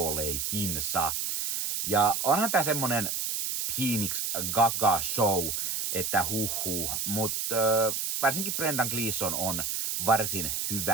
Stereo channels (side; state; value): right; noise; hiss, 1 dB below the sound